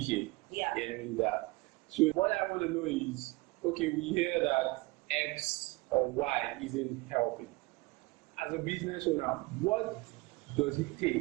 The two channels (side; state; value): left; quieter; 22.6 dB